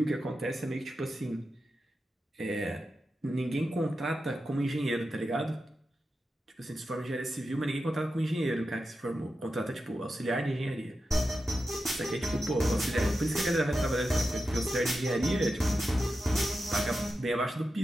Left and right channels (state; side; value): normal; both; correlation 0.90